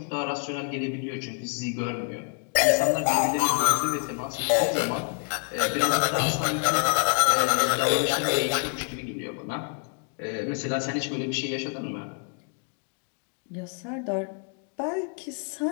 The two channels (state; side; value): quieter; right; 39.8 dB